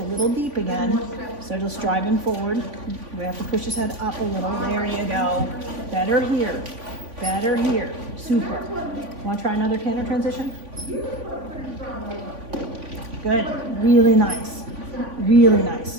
little deep again, so just drive him forward. We have to push his head up a little. There you go. Better here. Better here. Super. Want to try another canter transition? Good. Really nice. Really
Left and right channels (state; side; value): late; left; 3.5 ms